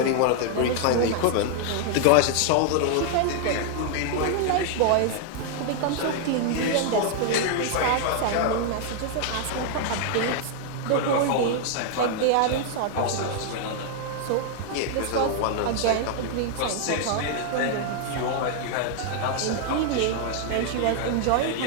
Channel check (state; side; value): different; both; correlation 0.00